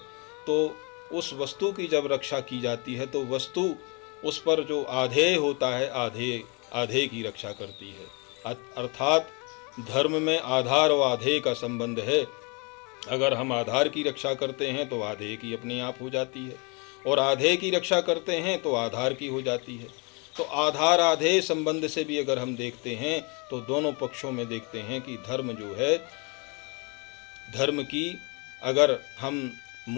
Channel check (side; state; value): right; quieter; 32.0 dB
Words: उस वस्तु की जब रक्षा की जाती है, तो वस्तु उस पर जो आधेय होता है, आधेय की रक्षा करती है। अर्थात धर्म में आधार और आधेय का संबंध है। अगर हम आधार की रक्षा करते हैं तो आधेय की अपने आप हो जाती है, और आधेय की रक्षा करते हैं तो आधार की हो जाती है। तो आधार आधेय संबंध से भी अगर हम देखते हैं तो दोनों पक्षों में देखते हैं कि धर्म जो है, धर्म की अगर हम